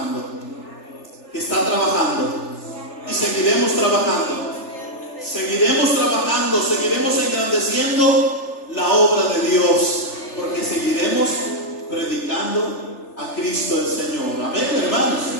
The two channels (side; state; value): right; late; 3.4 ms